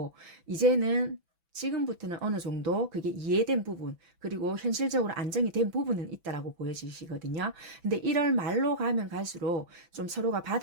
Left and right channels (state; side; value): late; left; 6.0 ms